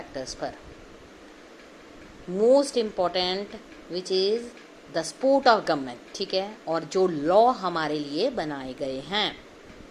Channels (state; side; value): identical; both; correlation 1.00